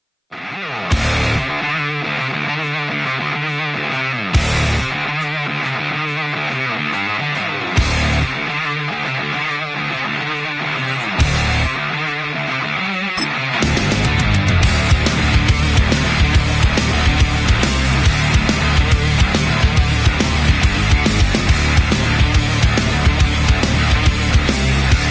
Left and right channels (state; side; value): identical; both; correlation 1.00